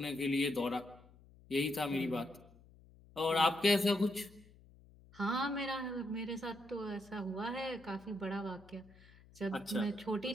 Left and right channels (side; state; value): left; noise; hum, 24 dB below the sound